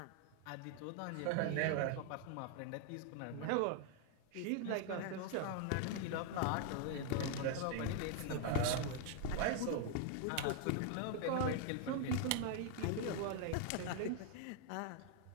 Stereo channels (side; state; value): both; different; correlation 0.00